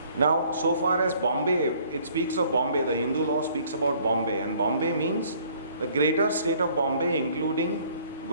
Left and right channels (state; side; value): inverted; both; correlation -0.59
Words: Now, so far as Bombay, it speaks of Bombay, the Hindu law speaks about Bombay, and Bombay means the greater state of Bombay including